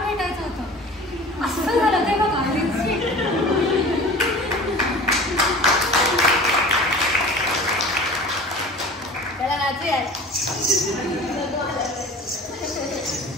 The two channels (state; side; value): normal; both; correlation 0.40